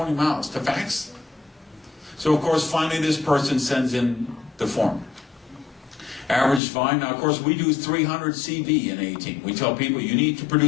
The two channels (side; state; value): right; drops out; at 6.6 s